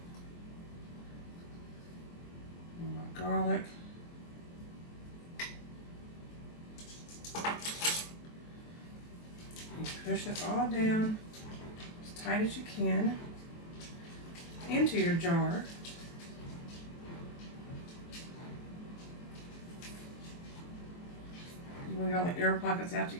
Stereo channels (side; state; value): right; late; 23 ms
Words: Garlic. And push it all down as tight as you can into your jar. You want to get all the air pockets out you